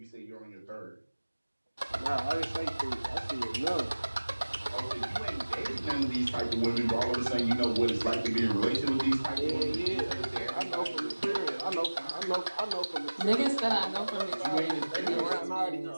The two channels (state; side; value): inverted; both; correlation -1.00